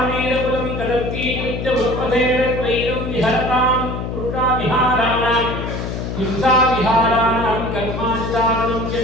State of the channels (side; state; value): left; noise; hum, 5 dB below the sound